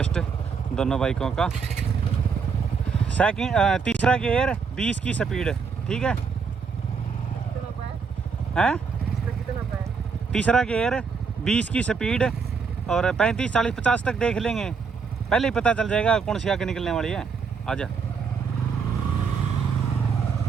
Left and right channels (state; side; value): quieter; left; 5.6 dB